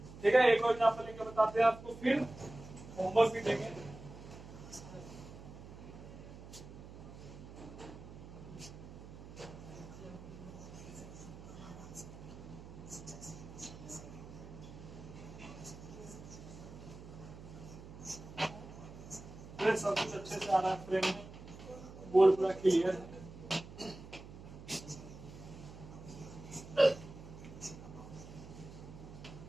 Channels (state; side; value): noise; right; hum, 14 dB below the sound